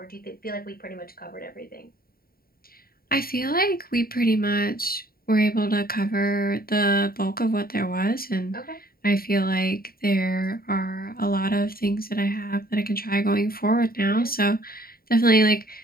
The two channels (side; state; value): right; late; 0.43 ms